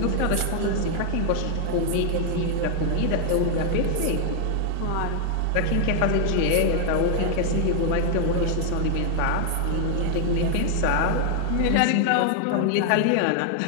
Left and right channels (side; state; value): both; different; correlation 0.00